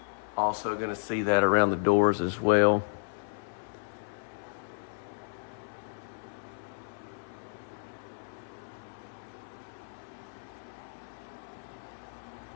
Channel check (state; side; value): silent; right; 56 dB below the other